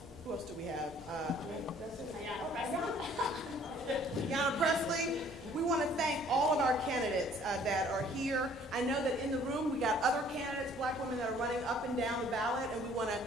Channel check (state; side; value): normal; both; correlation 0.57